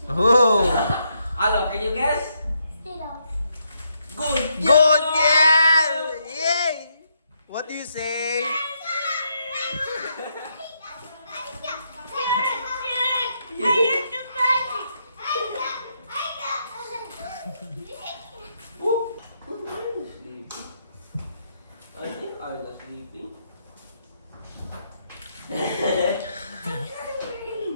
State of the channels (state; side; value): inverted; both; correlation -0.78